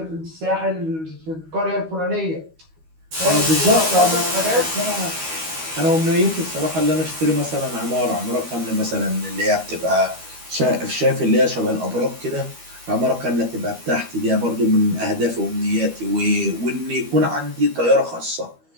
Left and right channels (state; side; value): late; left; 12 ms